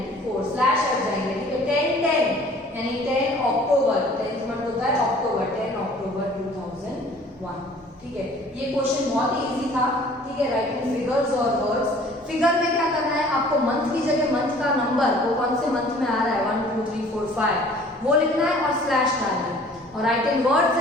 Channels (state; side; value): normal; both; correlation 0.51